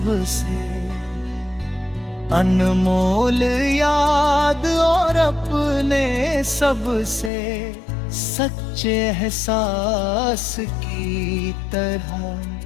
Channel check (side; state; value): right; drops out; at 7.3 s